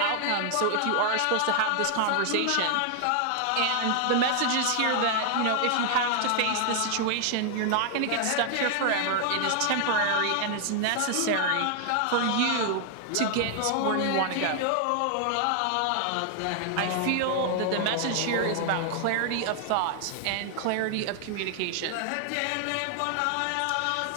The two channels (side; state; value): both; different; correlation 0.00